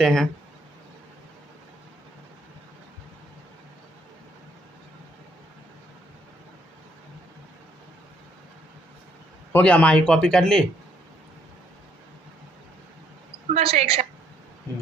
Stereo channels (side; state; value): both; normal; correlation 0.67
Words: हैं। हो गया माही, कॉपी कर ली? बस एक